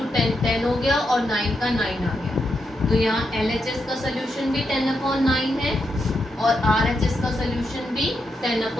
10 10 हो गया और 9 का 9 आ गया। तो यहाँ LHS का सोल्यूशन भी 10/9 है और RHS का सोल्यूशन भी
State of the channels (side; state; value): both; normal; correlation 0.83